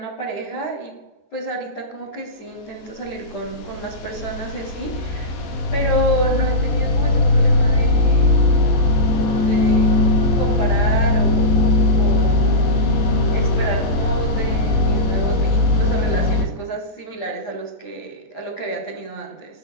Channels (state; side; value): late; right; 15 ms